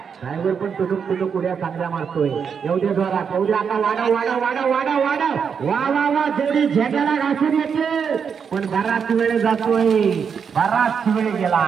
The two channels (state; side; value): quieter; left; 6.7 dB